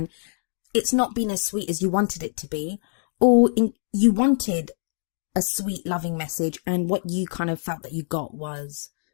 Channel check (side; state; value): right; silent; digital silence